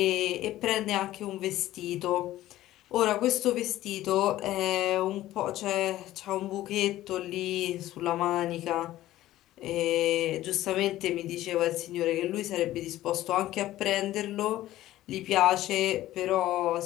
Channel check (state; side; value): quieter; right; 14.9 dB